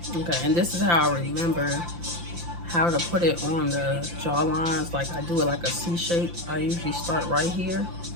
Okay, and this is how I remember how to put it on the jawlines. Like, I do it like a C shape. I usually start right here,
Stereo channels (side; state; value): left; late; 5.8 ms